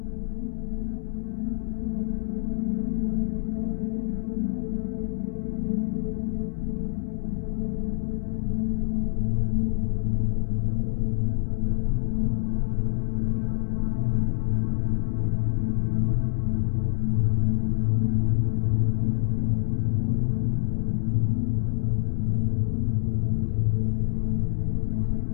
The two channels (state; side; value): silent; right; 61 dB below the other